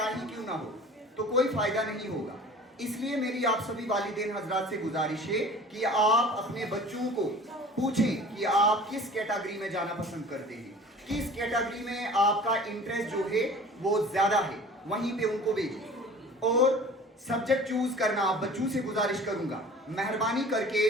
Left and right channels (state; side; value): normal; both; correlation 0.44